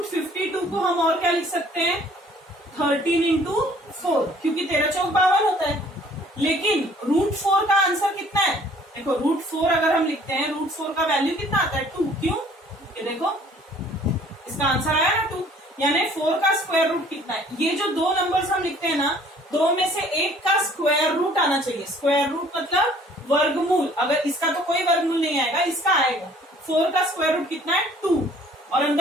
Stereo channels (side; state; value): both; normal; correlation 0.56